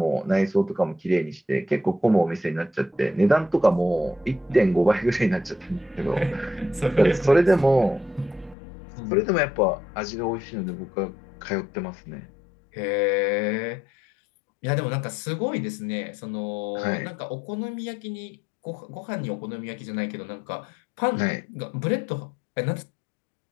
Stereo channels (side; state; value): right; drops out; at 8.6 s